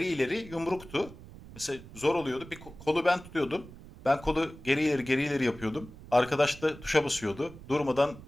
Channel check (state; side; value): noise; right; rumble, 17 dB below the sound